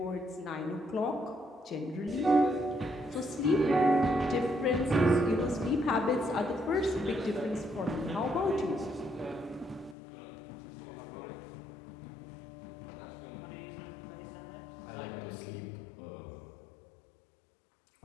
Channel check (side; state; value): right; drops out; at 10.0 s